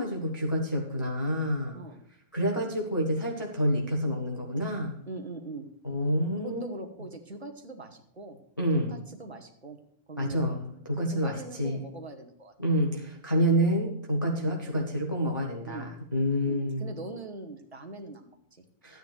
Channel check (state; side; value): inverted; both; correlation -0.50